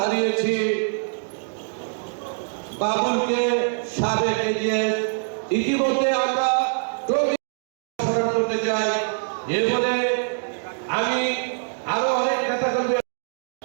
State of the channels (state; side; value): silent; left; digital silence